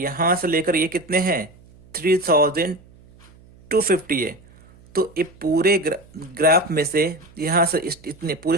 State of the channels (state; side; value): noise; right; hum, 26 dB below the sound